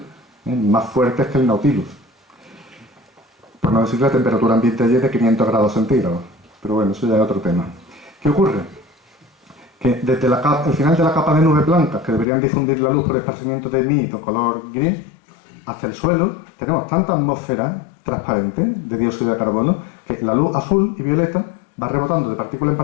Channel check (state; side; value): drops out; right; at 12.2 s